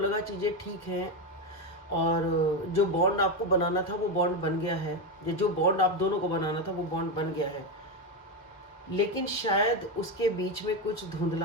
चीज़ें ठीक हैं और जो बॉन्ड आपको बनाना था वो बॉन्ड बन गया है। ये जो बॉन्ड आप दोनों को बनाना था वो बॉन्ड बन गया है। लेकिन शायद उसके बीच में कुछ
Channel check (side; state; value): both; normal; correlation 0.11